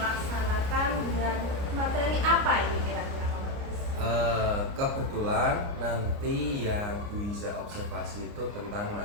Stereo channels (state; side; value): late; left; 29 ms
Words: dengan materi apa ini kira-kira Pak Bagas? Kebetulan nanti yang Bu Iza observasi itu tentang